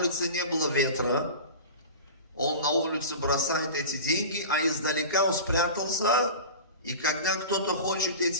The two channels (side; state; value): both; inverted; correlation -0.32